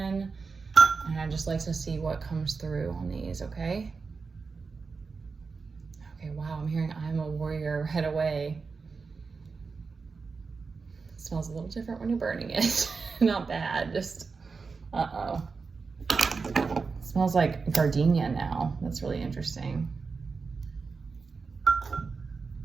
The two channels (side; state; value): left; quieter; 4.7 dB